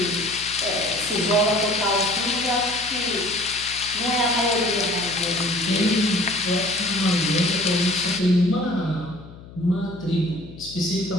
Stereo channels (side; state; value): left; noise; hum, 18 dB below the sound